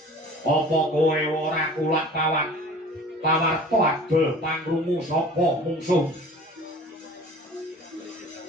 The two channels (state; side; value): normal; both; correlation 0.44